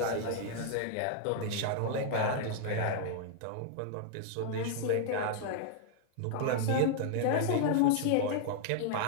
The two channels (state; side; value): different; both; correlation -0.01